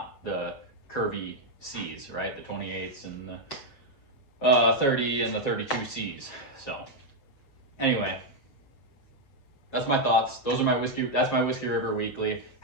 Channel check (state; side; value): late; right; 7.4 ms